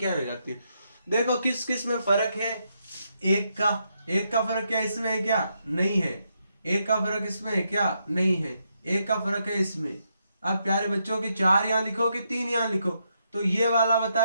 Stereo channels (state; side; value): inverted; both; correlation -0.80